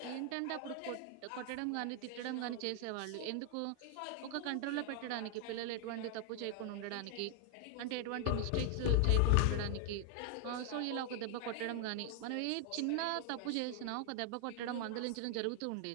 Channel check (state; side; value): different; both; correlation 0.00